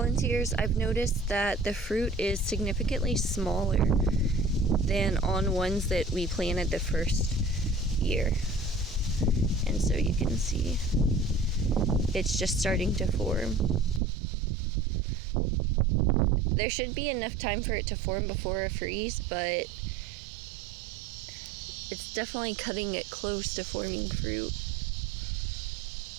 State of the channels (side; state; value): left; drops out; at 14.0 s